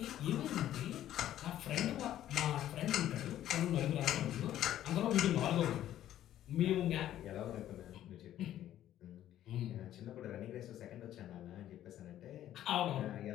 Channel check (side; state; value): right; quieter; 12.3 dB